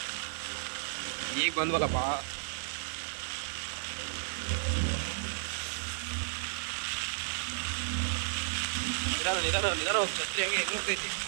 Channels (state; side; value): silent; left; 56 dB below the other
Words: ಈಗ ಬಂದ್ವಲ್ಲಪ್ಪ. ನಿಧಾನ ಹೋಗಿ ಛತ್ರಿ ಆಗಿ ಎದುರುತ್ತೈತಿ.